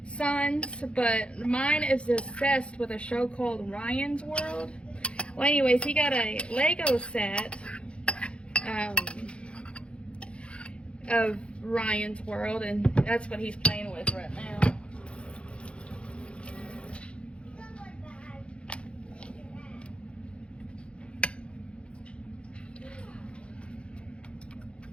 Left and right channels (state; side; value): late; right; 0.058 ms